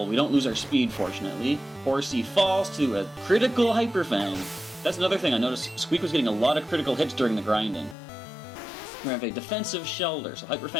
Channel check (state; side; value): drops out; right; at 8.0 s